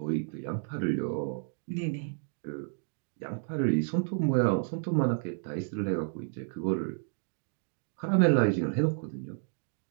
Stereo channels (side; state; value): left; silent; 57 dB below the other